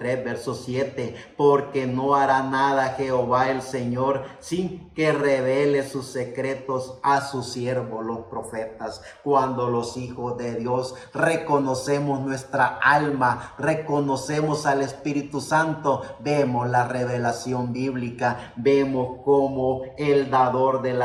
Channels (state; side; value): identical; both; correlation 1.00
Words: verso 7, porque no hará nada Jehová el Señor sin que revele sus secretos a sus siervos los profetas. Cuando los hijos de Dios reconocemos nuestra alma, reconocemos al Espíritu Santo, vemos la revelación bíblica, vemos cómo el dador de